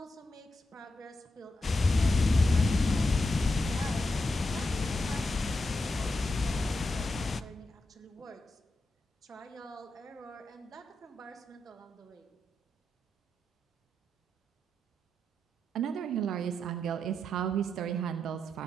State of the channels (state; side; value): normal; both; correlation 0.86